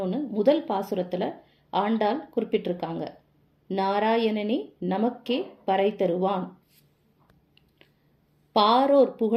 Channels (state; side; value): identical; both; correlation 1.00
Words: முதல் பாசுரத்துல ஆண்டாள் குறிப்பிட்டிருக்காங்க. நாராயணனே நமக்கே பறை தருவான், பாரோர்